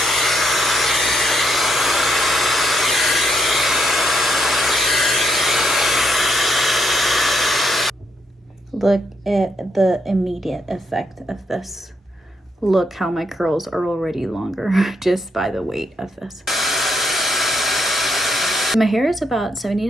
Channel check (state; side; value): normal; both; correlation 0.76